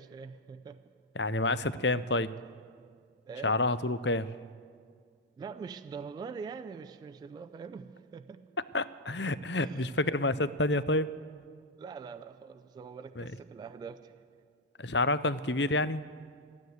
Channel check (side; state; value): both; normal; correlation 0.00